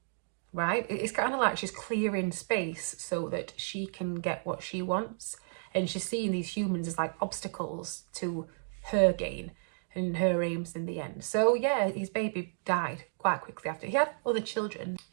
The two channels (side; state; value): left; silent; digital silence